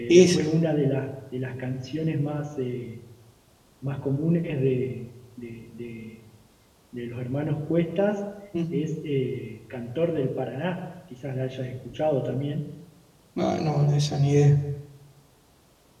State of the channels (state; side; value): identical; both; correlation 1.00